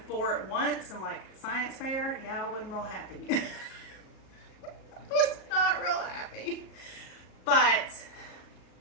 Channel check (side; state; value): right; late; 37 ms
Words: 4 at once and like science fair, yeah, I wasn't real happy. I was not real happy. But